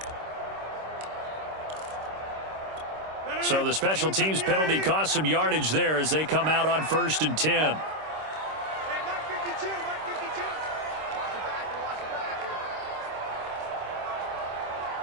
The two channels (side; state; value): left; late; 26 ms